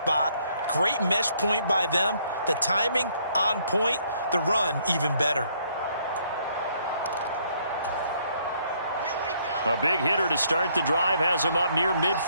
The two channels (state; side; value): inverted; both; correlation -0.68